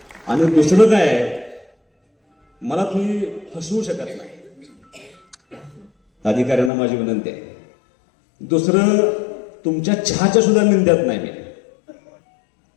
आणि दुसरं काय आहे, मला तुम्ही फसवू शकत नाही. अधिकाऱ्यांना माझी विनंती आहे. दुसरं, तुमच्या चहाच्या सुद्धा निंद्यात नाही मी,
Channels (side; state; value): right; drops out; at 6.7 s